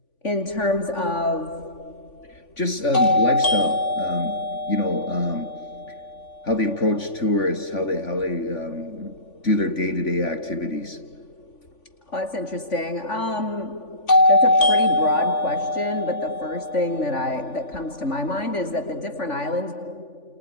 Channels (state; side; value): late; right; 3.5 ms